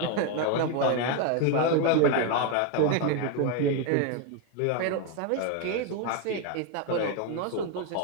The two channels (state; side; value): different; both; correlation 0.01